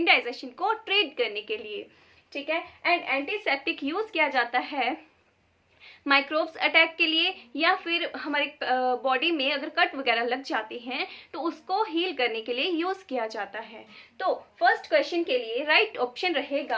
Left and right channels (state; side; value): identical; both; correlation 1.00